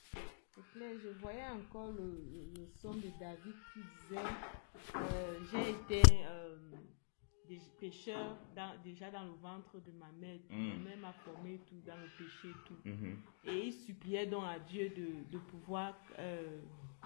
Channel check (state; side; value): silent; right; digital silence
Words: C'est clair. Je voyais encore le son de David qui disait j'ai été pécheur déjà dans le ventre de ma mère. Ma mère m'a formé tout dans le péché et tout. Et il suppliait donc à Dieu de pouvoir